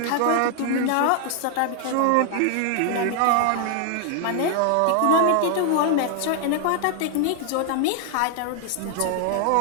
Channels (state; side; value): different; both; correlation 0.00